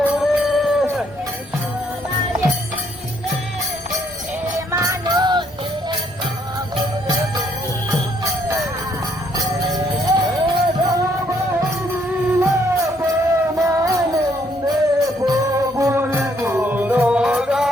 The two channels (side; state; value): both; normal; correlation 0.69